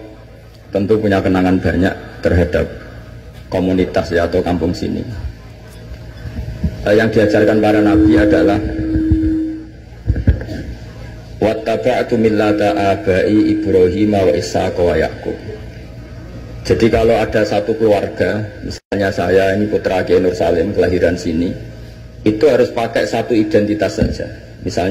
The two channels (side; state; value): both; identical; correlation 1.00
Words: tentu punya kenangan banyak terhadap komunitas ya atau kampung sini. Yang diajarkan para nabi adalah wattaba'tu millata abai Ibrahim wa Ishaq wa Yaqub. Jadi kalau ada satu keluarga, misalnya saya ini putra Kiai Nur Salim kelahiran sini, itu harus pakai satu identitas saja.